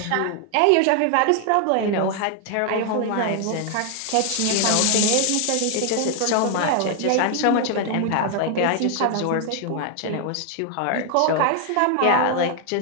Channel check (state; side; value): different; both; correlation 0.00